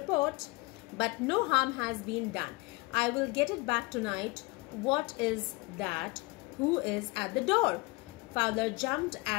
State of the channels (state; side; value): quieter; right; 24.3 dB